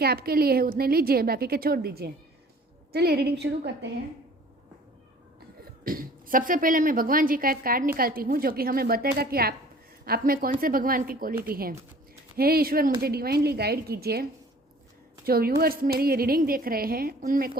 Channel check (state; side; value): normal; both; correlation 0.50